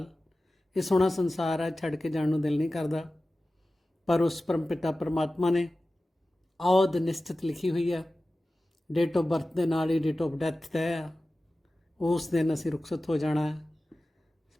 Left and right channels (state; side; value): normal; both; correlation 0.95